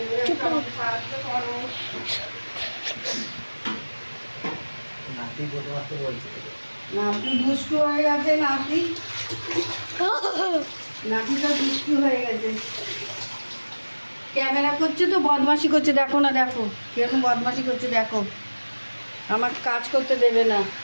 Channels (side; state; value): both; inverted; correlation -1.00